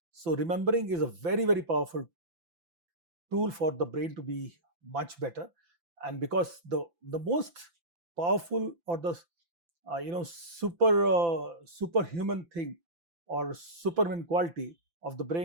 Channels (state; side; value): late; left; 5.9 ms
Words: So remembering is a very, very powerful tool for the brain to be much better. And because the most powerful or the superhuman thing or superman quality of the